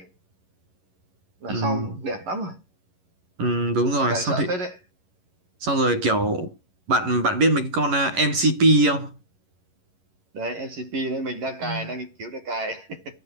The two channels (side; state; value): left; late; 11 ms